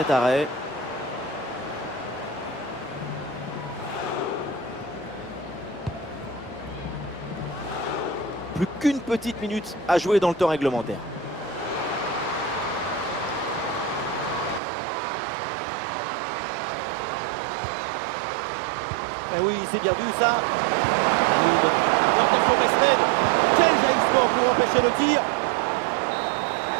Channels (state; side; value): drops out; left; at 14.6 s